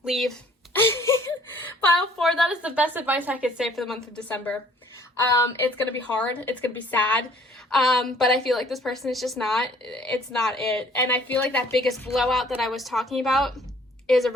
leave. Pile 4, that is the best advice I could say for the month of December. It's going to be hard. It's going to be sad. But I feel like this person is just it's not it. And I feel like that biggest blowout that I was talking about is a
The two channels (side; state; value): both; normal; correlation 0.57